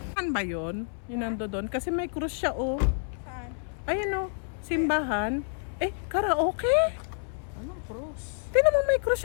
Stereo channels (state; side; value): silent; right; 59 dB below the other